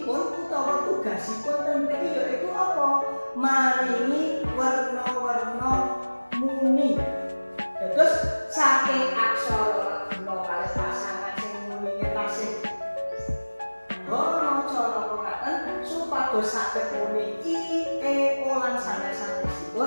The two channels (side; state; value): both; inverted; correlation -1.00